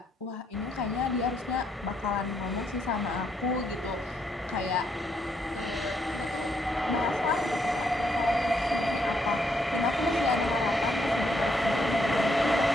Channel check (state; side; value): normal; both; correlation 0.75